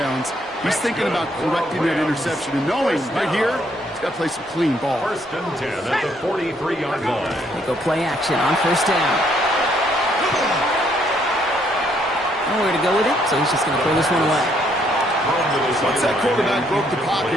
He's thinking about correcting that interception and knowing right here, he's got to play some clean ball. 1st and 10 at the 43-yard line. They go play action on 1st down. Nowhere to go with it, so he's just going to throw this one away. Once that quarterback broke the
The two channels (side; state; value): both; normal; correlation 0.69